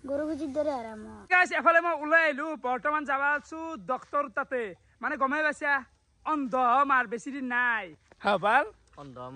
গৰু কুচিৰ দৰে হাৰা মোৰ গাইছ এফালে মই ওলাই আহিলো বৰ্তমান যাব আছো ডক্তৰ তাতে মানে গমাই পাইছা অন্ধ মাৰ বেছি দিন নাই ভাল অন্ধ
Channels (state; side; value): identical; both; correlation 1.00